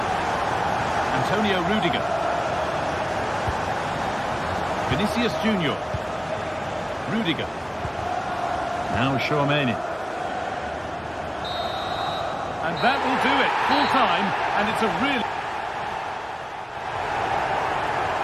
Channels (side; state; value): both; identical; correlation 1.00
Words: Antonio Rudiger. Vinicius Junior. Rudiger. Now Tchouameni. And that will do it. Full time, and it's a really...